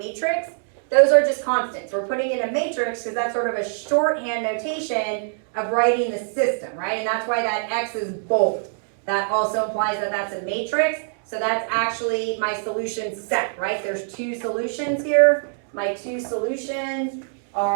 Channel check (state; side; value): silent; left; digital silence